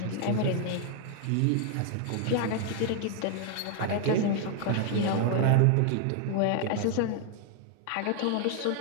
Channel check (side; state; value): both; different; correlation 0.00